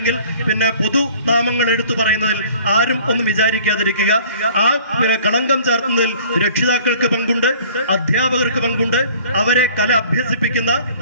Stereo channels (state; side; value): inverted; both; correlation -0.50